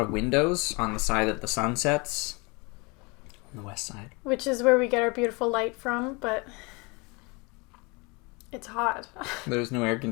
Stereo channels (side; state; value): right; quieter; 28.5 dB